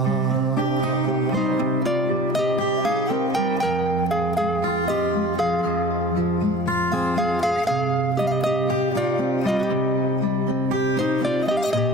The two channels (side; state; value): both; normal; correlation 0.44